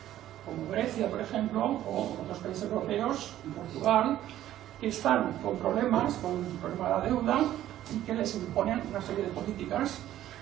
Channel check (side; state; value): left; quieter; 12.8 dB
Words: como Grecia, por ejemplo, o otros países europeos, Portugal, que están con problemas, con el problema de la deuda, y que les imponen una serie de políticas.